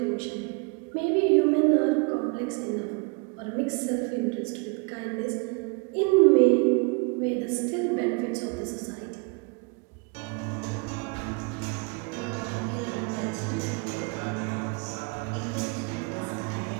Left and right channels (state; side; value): quieter; left; 31.2 dB